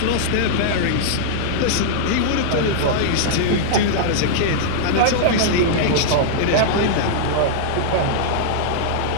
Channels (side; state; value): both; different; correlation -0.01